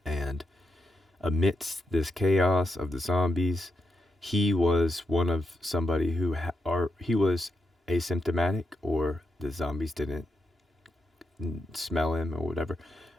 And amidst this chaos of the zombies, he was one of somebody who or he was asymptomatic, or the zombies didn't smell him or whatever.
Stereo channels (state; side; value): normal; both; correlation 0.82